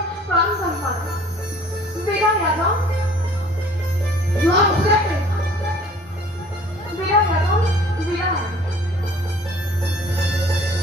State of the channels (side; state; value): both; normal; correlation 0.52